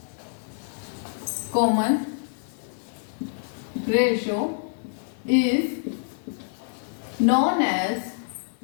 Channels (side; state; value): right; silent; 61 dB below the other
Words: common ratio is known as